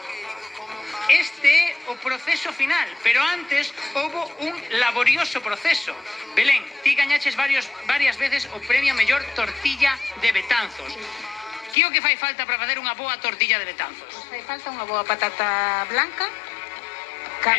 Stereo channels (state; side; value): drops out; right; at 11.8 s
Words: Este é o proceso final, pero antes houve un laborioso proceso. Belén, ti gañaches varias veces o premio a mellor tortilla de Betanzos. Que o que fai falta para facer unha boa tortilla de Betanzos? Pois fai falta unha boa patata blanca,